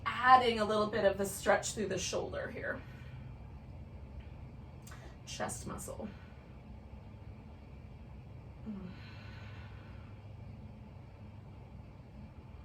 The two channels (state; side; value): identical; both; correlation 1.00